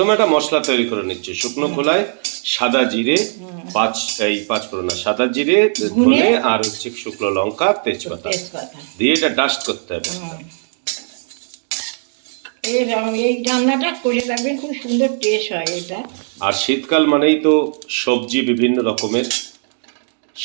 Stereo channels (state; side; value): silent; left; digital silence